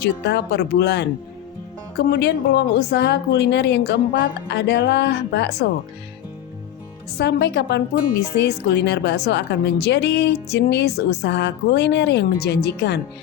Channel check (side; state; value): right; quieter; 11.6 dB